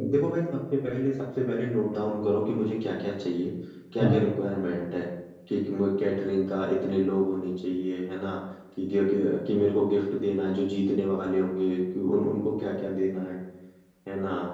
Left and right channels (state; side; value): identical; both; correlation 1.00